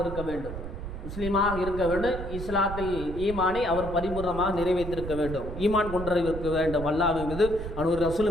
இருக்க வேண்டும். முஸ்லீமாக இருக்க வேண்டும். இஸ்லாத்தில் ஈமானை அவர் பரிபூர்ணமாக நிறைவேற்றிருக்க வேண்டும். ஈமான் கொண்டிருக்க வேண்டும். அல்லாஹ்வின் மீது அவருடைய ரசூல்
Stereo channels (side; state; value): right; noise; rumble, 8 dB below the sound